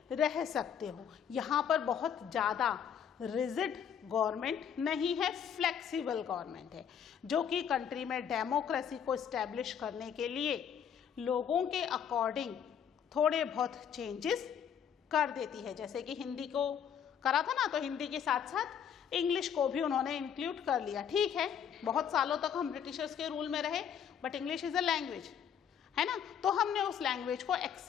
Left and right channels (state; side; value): quieter; right; 8.3 dB